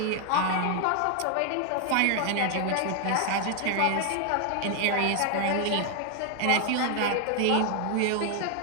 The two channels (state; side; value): different; both; correlation 0.00